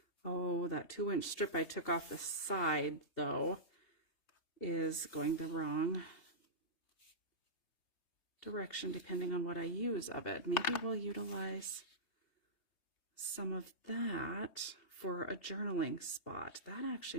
oh, that 2-inch strip I took off the side though is going the wrong direction depending on what I use of it. Maybe we'll utilize some of that for a journaling spot. That actually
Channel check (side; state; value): right; late; 3.2 ms